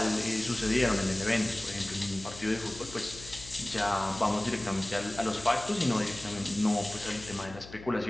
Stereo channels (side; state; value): left; noise; hum, 16 dB below the sound